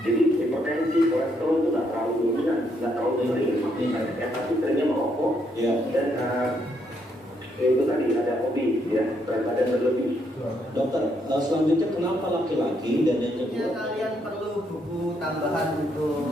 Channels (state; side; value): normal; both; correlation 0.75